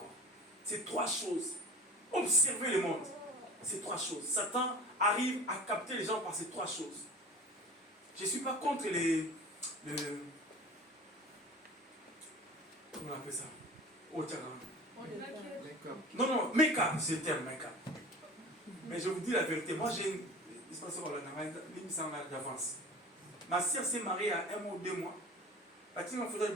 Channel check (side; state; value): both; normal; correlation 0.39